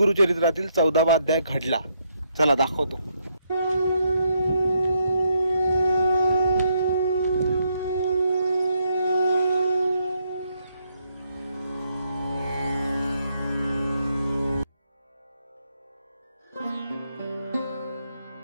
14वा अध्याय घडला. चला दाखवतो.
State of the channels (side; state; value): both; inverted; correlation -0.76